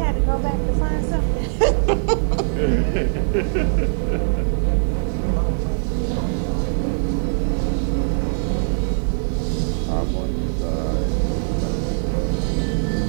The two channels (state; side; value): silent; left; 64 dB below the other